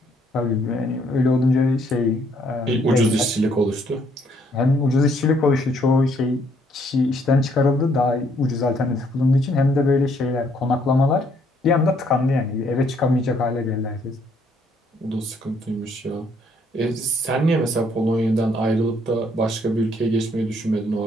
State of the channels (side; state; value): both; normal; correlation 0.67